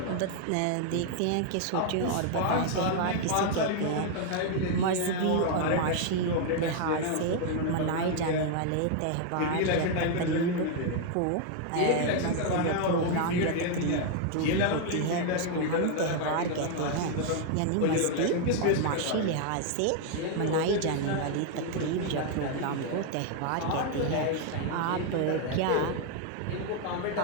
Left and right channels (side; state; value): both; different; correlation 0.00